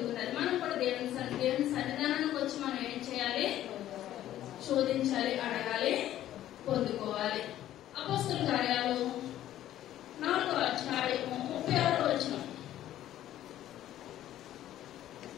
మనం కూడా దేవుని సన్నిధానానికి వచ్చి మనం ఏం చేయాలి? శోధించాలి, అడగాలి, పొందుకోవాలి. అపోస్తలుల కార్యాలు 4వ అధ్యాయము 36వ వచనం.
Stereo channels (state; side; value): quieter; right; 12.7 dB